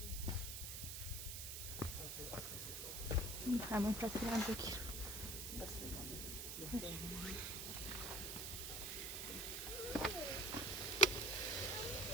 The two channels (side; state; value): right; noise; hiss, 5 dB below the sound